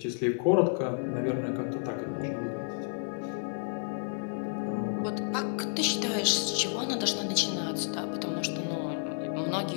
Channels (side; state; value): right; silent; digital silence